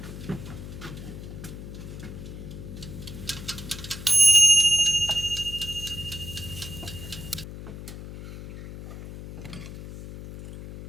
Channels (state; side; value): noise; left; hum, 11 dB below the sound